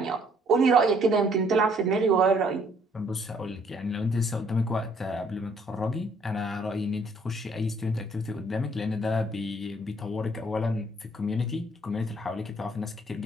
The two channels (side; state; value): both; normal; correlation 0.64